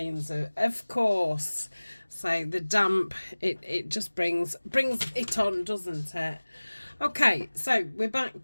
of course. So the damp, it just brings it on, doesn't it? Okay, so we're back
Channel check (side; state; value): both; inverted; correlation -1.00